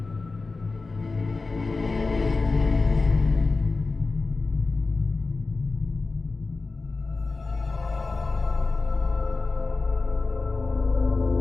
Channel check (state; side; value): quieter; right; 3.8 dB